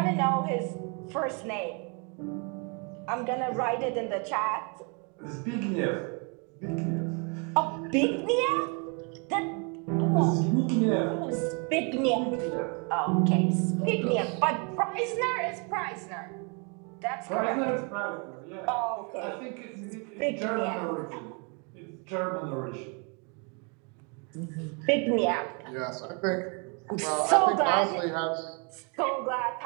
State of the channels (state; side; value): quieter; left; 34.8 dB